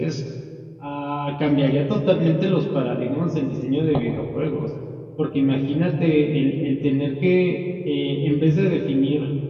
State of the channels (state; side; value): identical; both; correlation 1.00